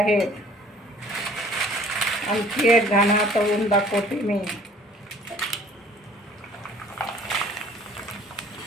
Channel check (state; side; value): normal; both; correlation 0.53